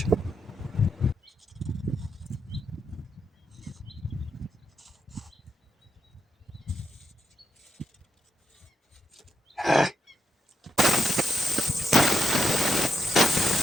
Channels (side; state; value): both; normal; correlation 0.82